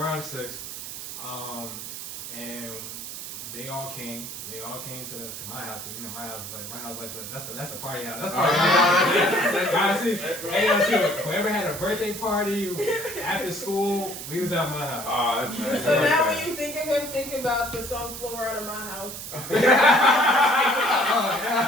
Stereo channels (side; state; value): right; noise; hiss, 9 dB below the sound